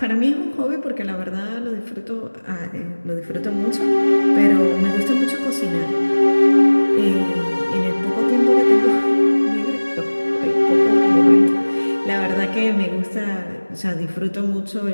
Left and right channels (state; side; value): inverted; both; correlation -1.00